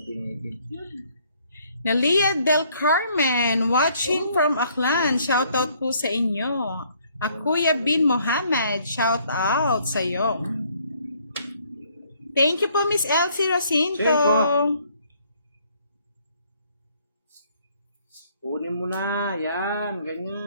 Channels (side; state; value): both; inverted; correlation -0.64